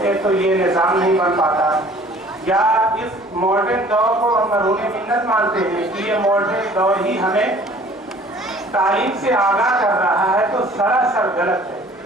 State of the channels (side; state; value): both; normal; correlation 0.52